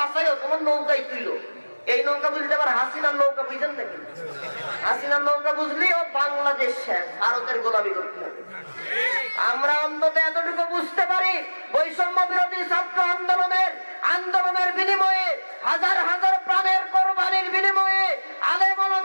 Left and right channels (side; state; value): both; inverted; correlation -1.00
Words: তোমার নৌকাই তুইল। এই নৌকা বুঝলে আবার হাসিনার নৌকা বুঝেন নাকি? হাসিনার নৌকা বুঝলি ও বাংলাদেশ শেষ, ভারতের গোলামি করতে হবে। আমরা অন্তত এতটুকু বুঝতে পারি, বৈষম্য বিরোধী ছাত্র আন্দোলনের বিনিময়ে, হাজার হাজার প্রাণের কোরবানির বিনিময়ে আলেম